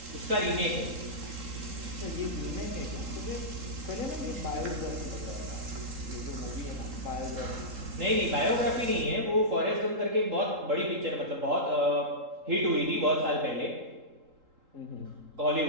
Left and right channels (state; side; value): late; left; 3.8 ms